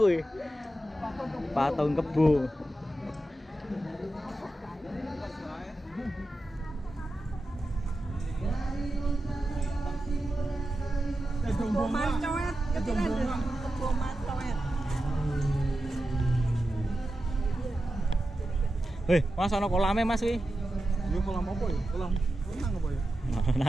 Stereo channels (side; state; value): both; normal; correlation 0.91